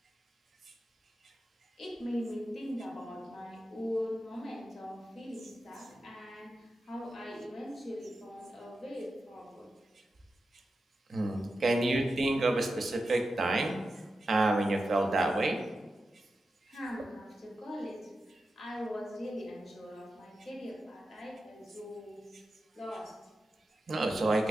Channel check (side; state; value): both; normal; correlation 0.91